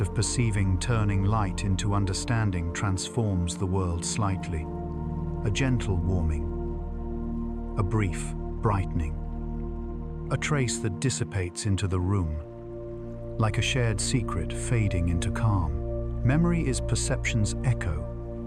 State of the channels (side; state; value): both; identical; correlation 1.00